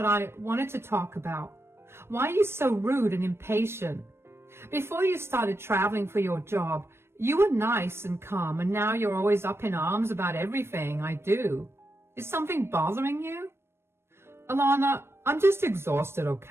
I wanted to talk about. Why are you so rude and impatient? Before you started traveling for your job, you were nice and calm, and now you're always up in arms about everything I do. Is something bothering you? Alana, I'm just exhausted,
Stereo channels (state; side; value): late; left; 0.12 ms